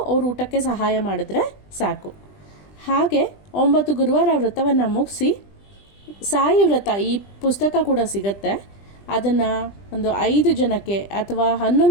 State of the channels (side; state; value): right; late; 20 ms